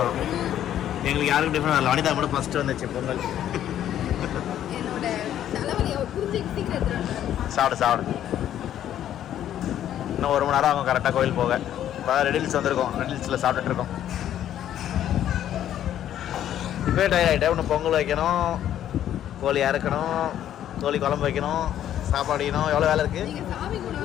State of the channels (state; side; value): quieter; right; 11.1 dB